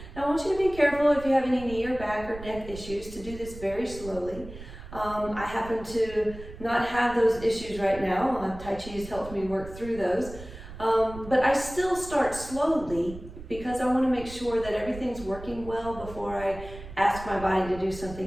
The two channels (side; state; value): right; noise; rumble, 14 dB below the sound